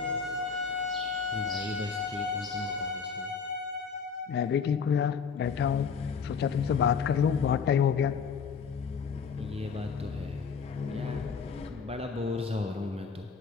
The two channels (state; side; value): quieter; right; 6.1 dB